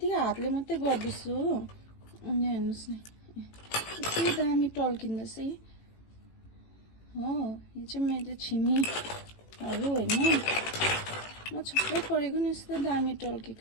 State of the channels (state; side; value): late; right; 18 ms